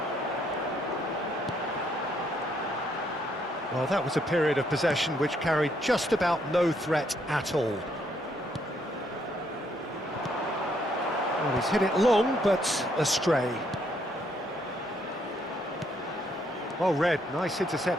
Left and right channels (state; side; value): normal; both; correlation 0.72